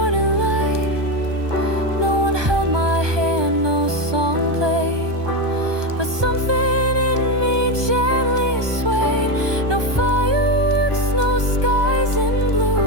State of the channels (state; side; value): late; left; 1.2 ms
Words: light. No one held my hand, no song played, but something in me gently swayed. No fireworks, no skies in